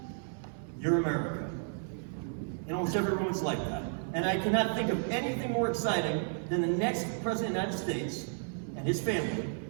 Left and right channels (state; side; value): silent; left; digital silence